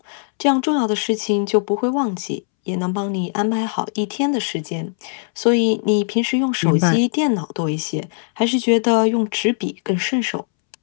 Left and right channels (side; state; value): right; silent; 66 dB below the other